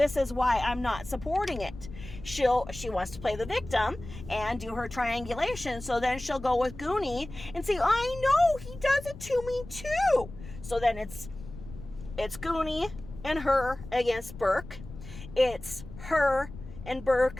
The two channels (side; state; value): left; noise; rumble, 14 dB below the sound